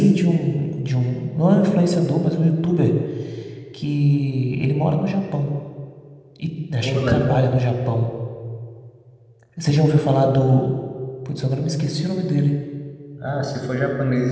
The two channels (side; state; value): both; identical; correlation 1.00